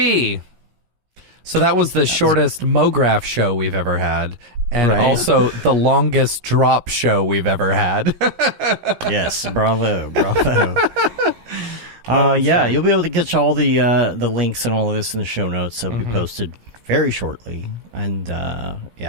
So that was the shortest Mograph show we've ever had. And also the longest drop show we've ever had. Yes, bravo. Yeah, you'll be able to get all the links and all of this in the show notes. They'll be posted very shortly. And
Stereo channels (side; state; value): left; late; 17 ms